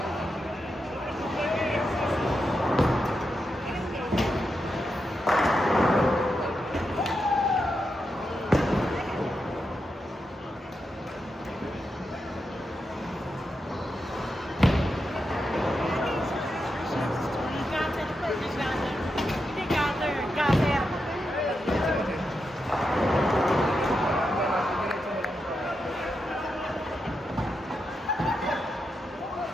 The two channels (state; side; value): normal; both; correlation 0.86